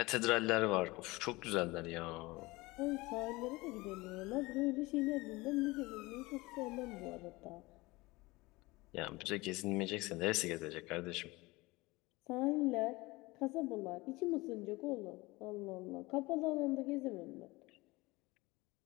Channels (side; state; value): right; quieter; 22.2 dB